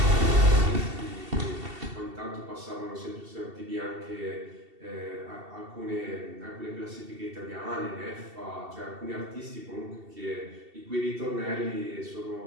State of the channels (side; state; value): left; late; 2.7 ms